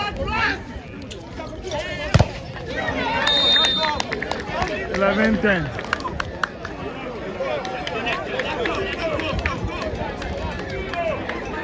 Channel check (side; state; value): both; identical; correlation 1.00